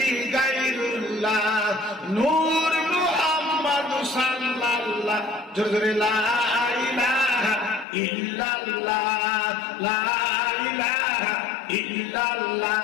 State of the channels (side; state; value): right; drops out; at 7.9 s